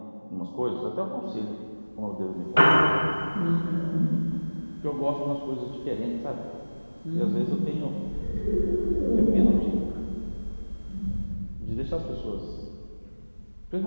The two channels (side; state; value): both; inverted; correlation -1.00